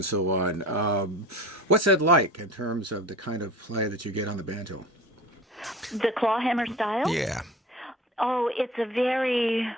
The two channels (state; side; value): normal; both; correlation 0.38